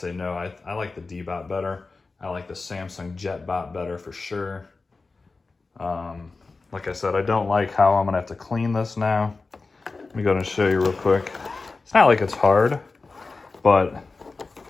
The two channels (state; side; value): quieter; right; 3.9 dB